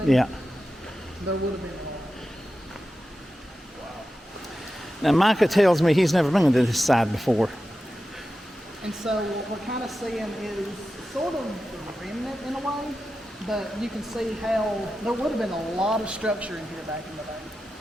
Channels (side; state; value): both; normal; correlation 0.92